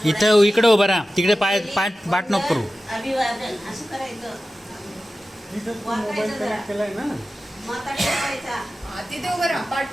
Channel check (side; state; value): both; normal; correlation 0.95